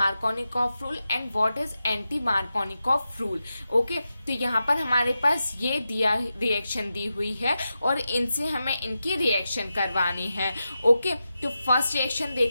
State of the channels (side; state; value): both; inverted; correlation -0.90